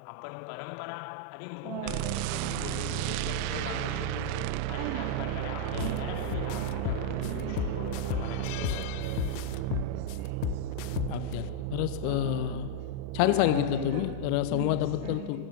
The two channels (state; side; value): different; both; correlation -0.01